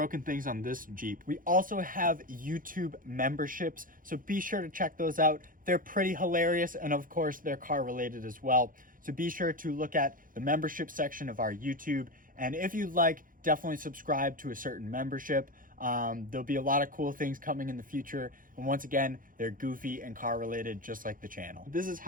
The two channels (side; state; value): left; late; 0.40 ms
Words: things on this Jeep. We also have YouTube memberships, so be sure to check those out. They're pretty hilarious, and of course, they're car related as well. So be sure to look at the membership section of our YouTube And if you'd like, definitely subscribe to a certain membership. There'll be a lot of cool things coming in the future. And once again, they're goofy and car related, just like the channel. This is